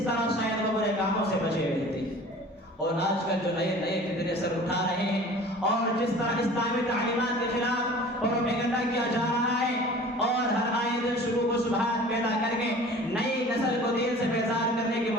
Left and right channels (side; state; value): both; normal; correlation 0.44